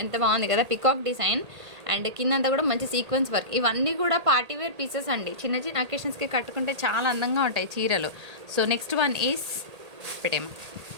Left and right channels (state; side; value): late; left; 1.8 ms